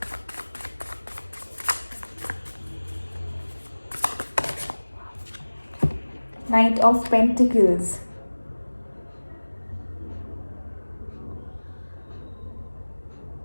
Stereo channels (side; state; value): both; inverted; correlation -1.00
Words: Knight of Pentacles.